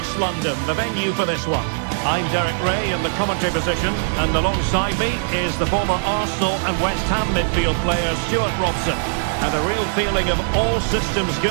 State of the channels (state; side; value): silent; left; digital silence